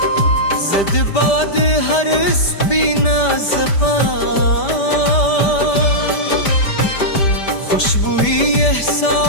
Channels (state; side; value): late; right; 5.1 ms